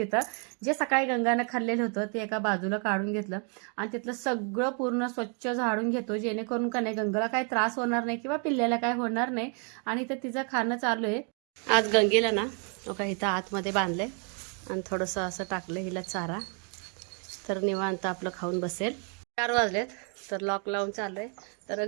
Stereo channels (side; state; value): left; quieter; 39.6 dB